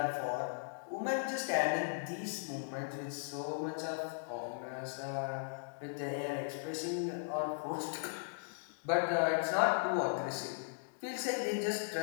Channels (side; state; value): right; silent; digital silence